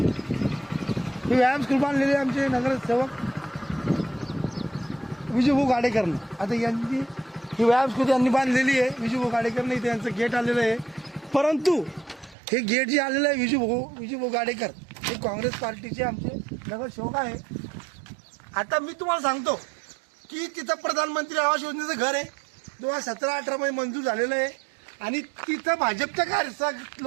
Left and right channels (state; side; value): drops out; left; at 12.4 s